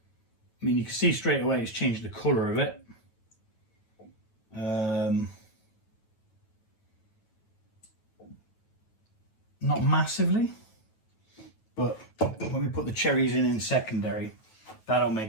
mean, you can see straight away it's changed the colour of it. Not massively, but when we put the cherries in secondary, that'll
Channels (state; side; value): late; right; 9.2 ms